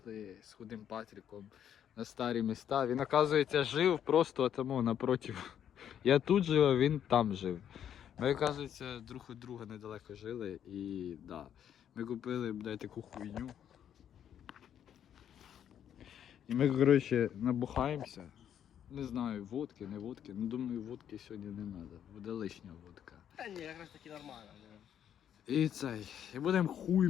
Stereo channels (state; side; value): quieter; right; 9.6 dB